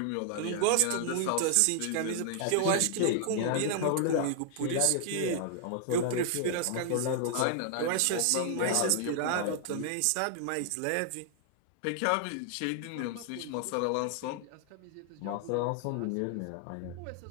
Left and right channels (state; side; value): different; both; correlation 0.00